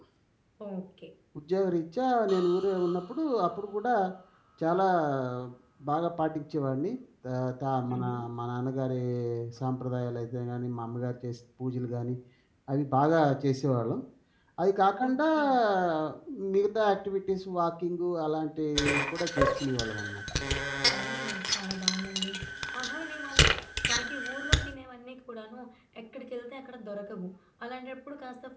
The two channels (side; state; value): both; identical; correlation 1.00